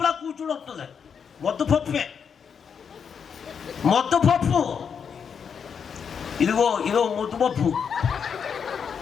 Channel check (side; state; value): right; quieter; 6.8 dB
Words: కూర్చుని వస్తుంది. మొత్తపప్పే, మొత్తపప్పు. ఇదిగో ముద్దుపప్పు.